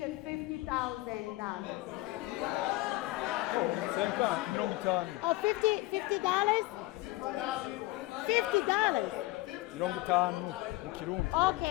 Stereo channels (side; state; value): right; quieter; 19.8 dB